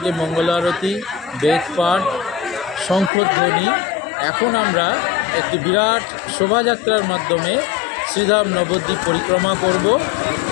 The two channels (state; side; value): drops out; right; at 3.1 s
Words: মঙ্গল আরতি, বেদপাঠ, শঙ্খধ্বনি। এখন আমরা একটি বিরাট শোভাযাত্রার মাধ্যমে শ্রীধাম নবদ্বীপ পরিক্রমা করব।